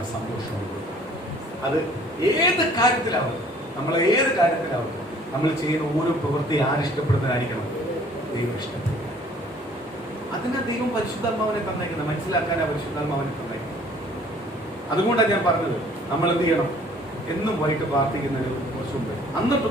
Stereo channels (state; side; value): normal; both; correlation 0.55